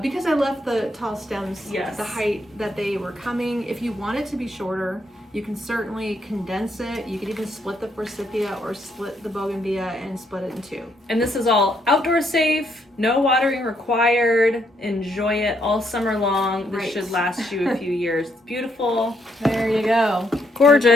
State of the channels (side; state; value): both; normal; correlation 0.74